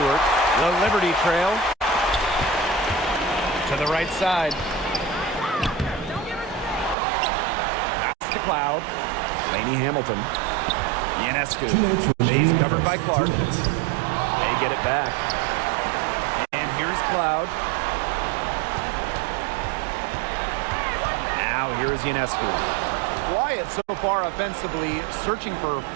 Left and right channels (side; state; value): left; drops out; at 7.0 s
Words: The Liberty trail. To the right side. Pass to Cloud. Lainey Hamilton. Ionescu. She's covered by Clark. They get it back. And here's Cloud. Now here's Ionescu. Quiet so far offensively, searching for her